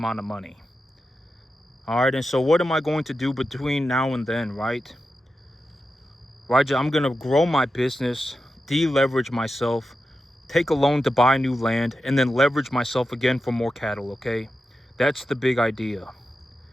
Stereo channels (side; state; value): both; normal; correlation 0.90